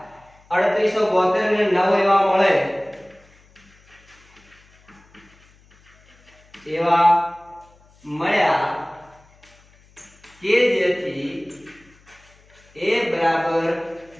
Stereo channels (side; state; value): left; noise; hum, 29 dB below the sound